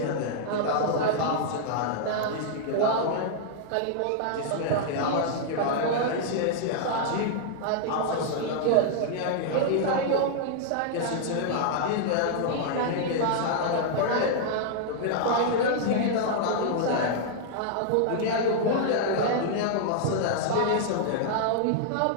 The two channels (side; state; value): both; different; correlation -0.01